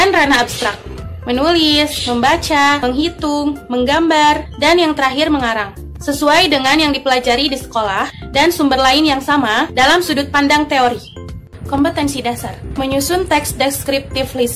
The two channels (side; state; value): both; identical; correlation 1.00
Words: ranah abstrak, menulis, membaca, menghitung, menggambar, dan yang terakhir mengarang, sesuai dengan yang dipelajari di sekolah dan sumber lain yang sama dalam sudut pandang teori. Kompetensi dasar, menyusun teks deskriptif